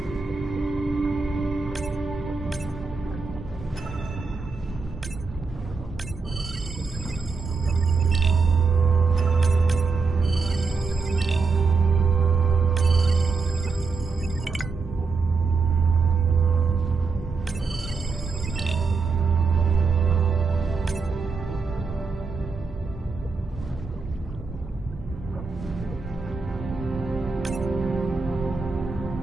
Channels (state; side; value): quieter; left; 4.4 dB